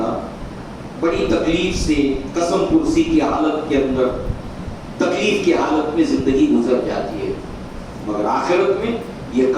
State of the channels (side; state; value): both; identical; correlation 1.00